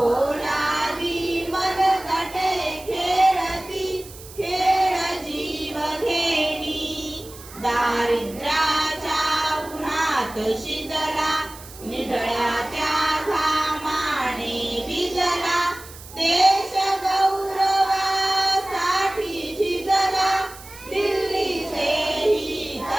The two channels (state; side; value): noise; right; hiss, 18 dB below the sound